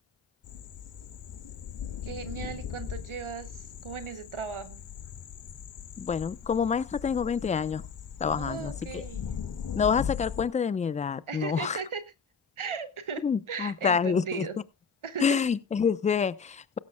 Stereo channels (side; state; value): right; quieter; 5.1 dB